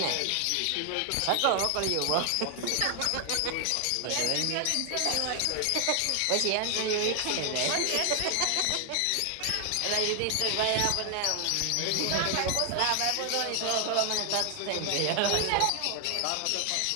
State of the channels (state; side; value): different; both; correlation 0.00